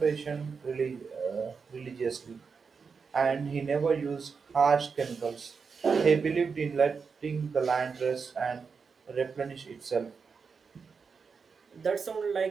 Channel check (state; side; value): quieter; left; 5.4 dB